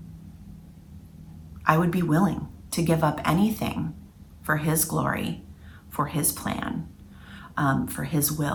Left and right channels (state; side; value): identical; both; correlation 1.00